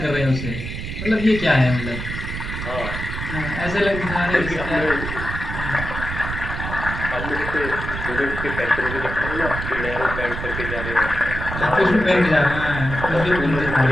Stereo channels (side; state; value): right; noise; rumble, 6 dB below the sound